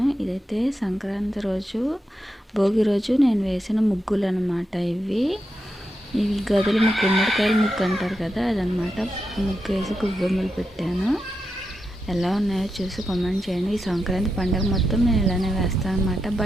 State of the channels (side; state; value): both; normal; correlation 0.86